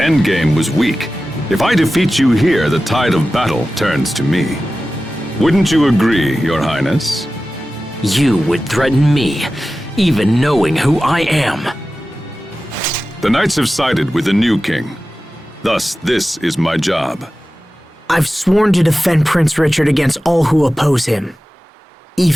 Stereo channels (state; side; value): normal; both; correlation 0.95